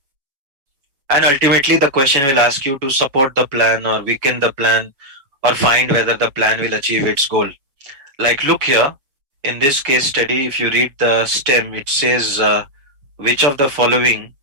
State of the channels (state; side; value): late; left; 7.1 ms